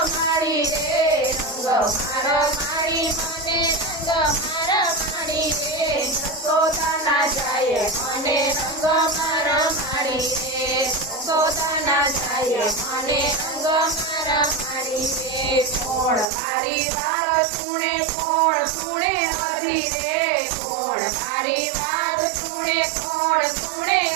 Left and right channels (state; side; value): drops out; left; at 16.2 s